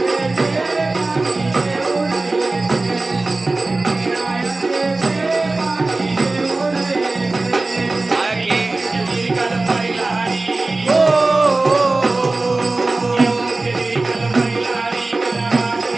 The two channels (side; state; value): left; quieter; 3.2 dB